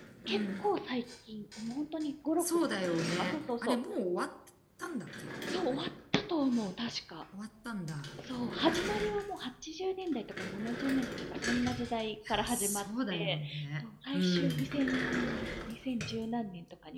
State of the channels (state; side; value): identical; both; correlation 1.00